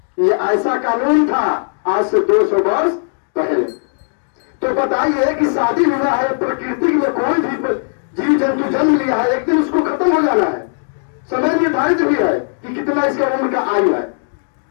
ये ऐसा कानून था आज से 200 वर्ष पहले। तो बताइए कि शादी हुआ है, प्रकृति में कोई भी जीव जंतु जन्म लिया है, एक दिन उसको खत्म हो जाना है, समय निर्धारित भी है कि कितना इसका उम्र का आयु है।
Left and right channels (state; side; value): silent; right; digital silence